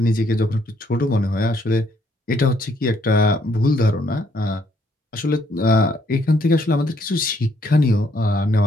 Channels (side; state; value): both; normal; correlation 0.69